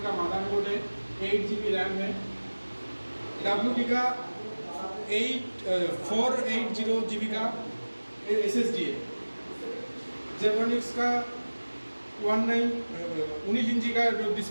का मदरबोर्ड है, 8 GB रैम है, WD का 480 GB का SSD है, जेब्रानिक्स का 19 इंची का जो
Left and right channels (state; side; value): inverted; both; correlation -1.00